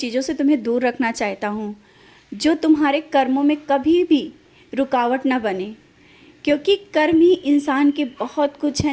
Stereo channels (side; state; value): both; identical; correlation 1.00